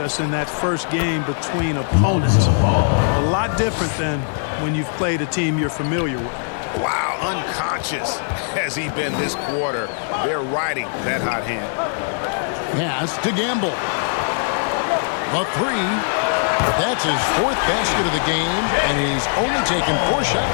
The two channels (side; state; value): right; silent; digital silence